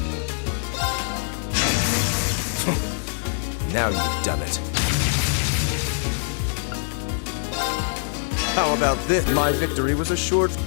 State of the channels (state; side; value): silent; right; digital silence